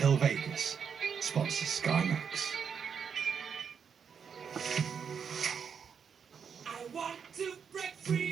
Vegas sponsors Sky Max.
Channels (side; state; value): left; quieter; 6.8 dB